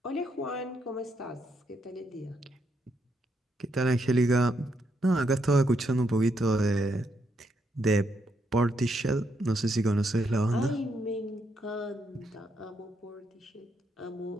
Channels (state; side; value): normal; both; correlation 0.77